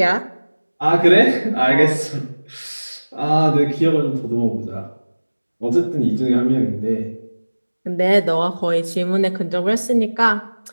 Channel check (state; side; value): inverted; both; correlation -1.00